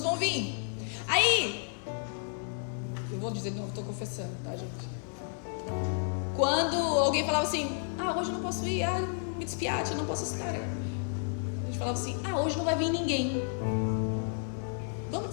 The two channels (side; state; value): right; silent; 57 dB below the other